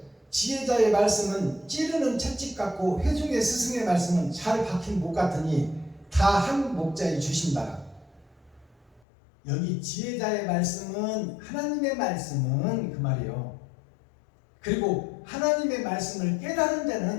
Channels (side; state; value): right; drops out; at 9.0 s